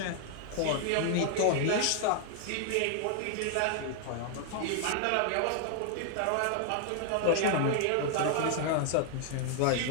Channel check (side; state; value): both; different; correlation 0.00